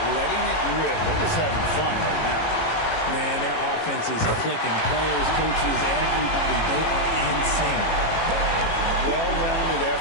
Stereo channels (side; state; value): right; late; 18 ms